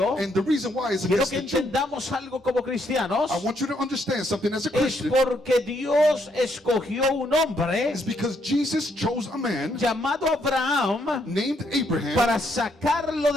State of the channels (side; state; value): both; normal; correlation 0.74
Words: And the reason why is quiero against que the Jew. entendamos algo como cristianos, I want you to understand something as a es Christian. porque Dios escogió un hombre It's because Jesus chose a man llamado Abraham named Abraham para sacarlo